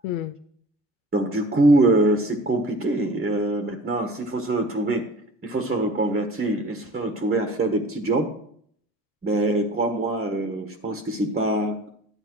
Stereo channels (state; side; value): normal; both; correlation 0.42